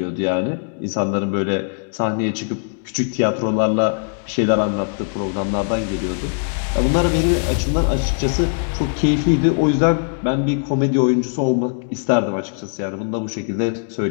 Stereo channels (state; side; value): silent; right; digital silence